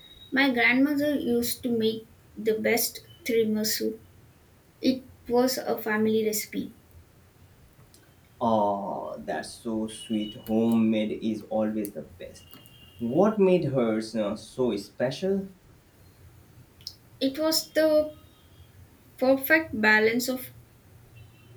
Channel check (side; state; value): both; identical; correlation 1.00